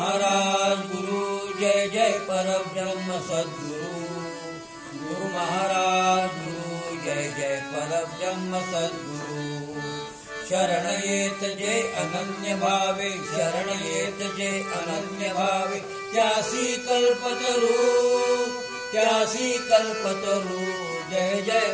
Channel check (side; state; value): both; identical; correlation 1.00